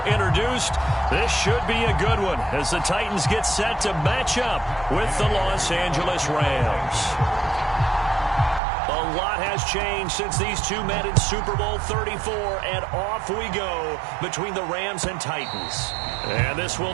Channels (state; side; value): drops out; left; at 8.6 s